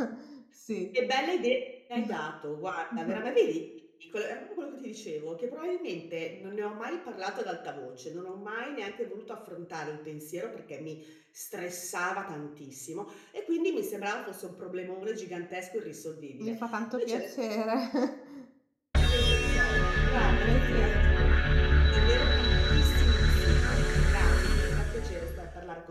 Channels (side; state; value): both; identical; correlation 1.00